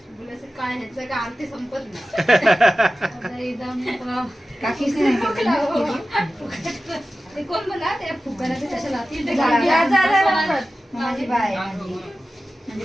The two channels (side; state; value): both; normal; correlation 0.95